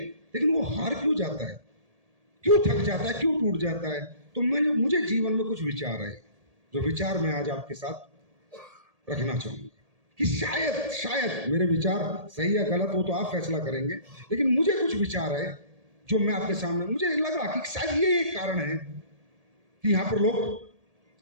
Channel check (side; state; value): left; late; 1.8 ms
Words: लेकिन वो हार क्यों जाता है, क्यों थक जाता है, क्यों टूट जाता है? तो मुझे जीवन में कुछ विचार है, जो विचार मैं आज आपके साथ रखना चाहूंगा कि शायद मेरे विचार सही या गलत हो तो आप फैसला करेंगे, लेकिन मुझे कुछ विचार है जो मैं आपके सामने, मुझे लगा कि शायद ये एक कारण है कि यहाँ पर लोग